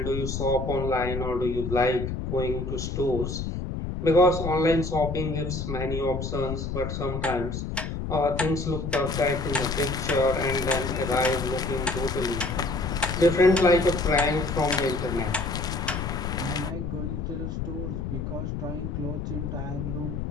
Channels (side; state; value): left; noise; rumble, 4 dB below the sound